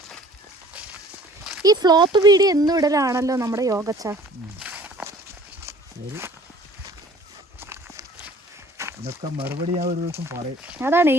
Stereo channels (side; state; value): both; normal; correlation 0.51